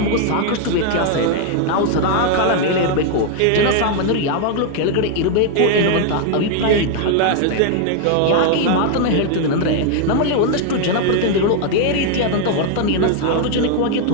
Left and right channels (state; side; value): different; both; correlation 0.00